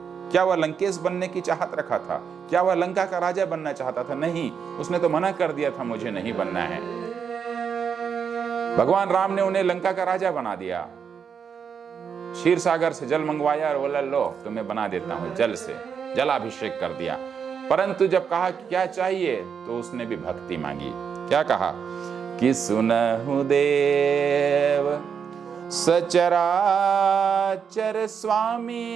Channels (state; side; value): quieter; left; 6.9 dB